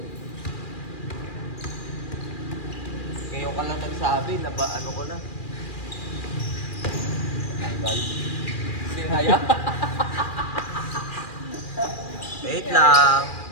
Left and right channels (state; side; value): late; right; 2.4 ms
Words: Ngayon ka lang nagsabi na ba ano ko na? Tanggal. Sinaya. Wait lang.